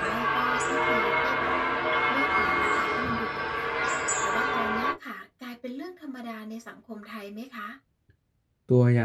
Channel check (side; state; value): both; identical; correlation 1.00